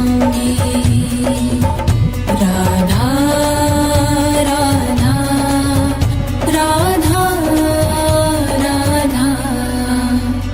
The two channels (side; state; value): both; identical; correlation 1.00